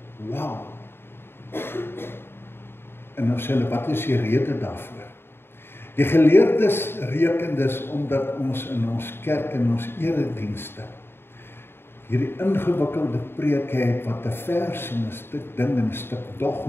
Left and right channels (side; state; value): right; late; 0.11 ms